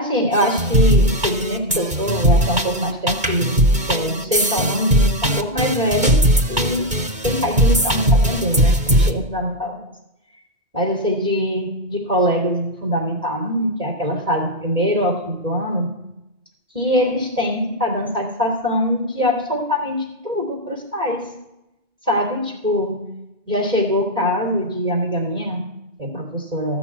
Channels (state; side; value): late; left; 2.2 ms